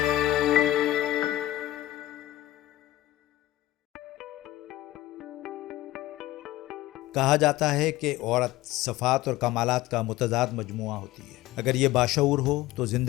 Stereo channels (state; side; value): quieter; right; 15.9 dB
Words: جاتا ہے کہ عورت صفات اور کمالات کا متضاد مجموعہ ہوتی ہے. اگر یہ باشعور ہو تو